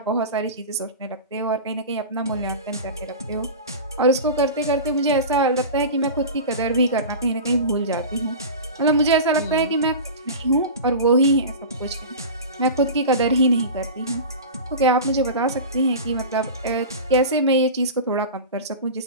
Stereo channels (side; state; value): both; inverted; correlation -0.30